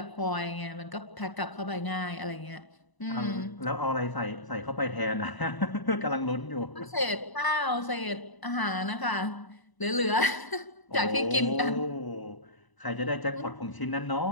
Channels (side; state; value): right; late; 1.0 ms